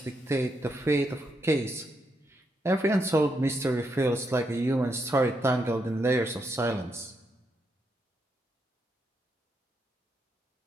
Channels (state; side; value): normal; both; correlation 0.80